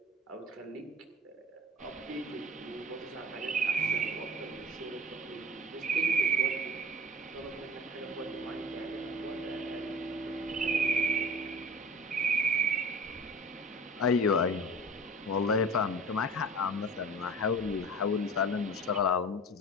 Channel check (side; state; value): both; normal; correlation 0.39